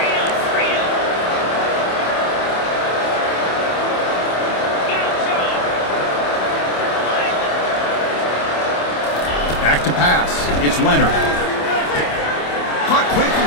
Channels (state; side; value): late; right; 27 ms